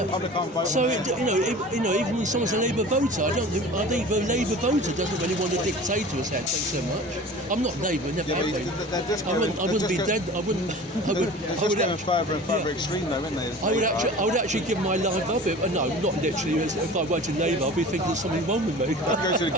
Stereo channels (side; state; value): both; normal; correlation 0.40